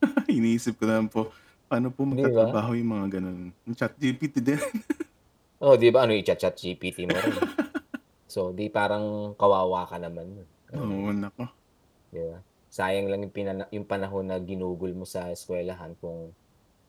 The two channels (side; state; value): both; identical; correlation 1.00